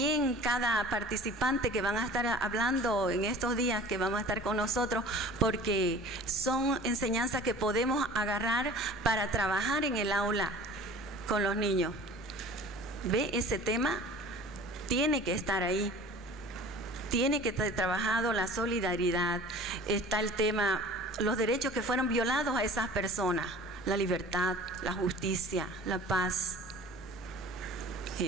cada participante que van a estar hablando en estos días, que vamos a estar con nosotros, porque son enseñanzas que podemos agarrar para trabajar en el aula con los niños. ¿Ve? Ese tema tiene que estar ahí. Tiene que estar trabajado la solidaridad. Está el tema, los derechos que fueron violados a esas personas. La libertad, la justicia, la paz.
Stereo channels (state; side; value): noise; left; rumble, 22 dB below the sound